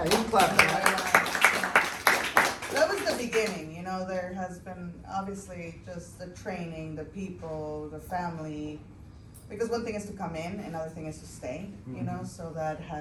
you can clap. That was the beginning. There has been obviously just the training, the people, the family. Because one thing is to come in, another thing is to stay. Mhm. So that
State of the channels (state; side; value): identical; both; correlation 1.00